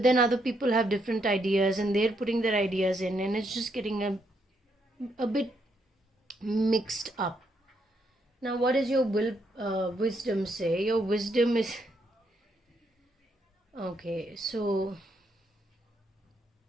then other people have different ideas and they're putting their ideas in, and it's just getting a bit mixed up. Now, what does your wisdom say? Your wisdom is... Okay, so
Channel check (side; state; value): both; normal; correlation 0.76